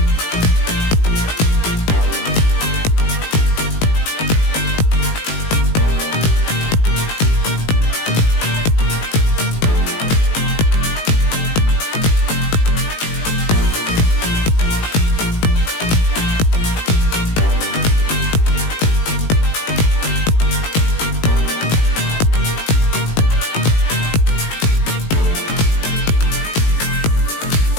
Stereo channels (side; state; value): right; late; 18 ms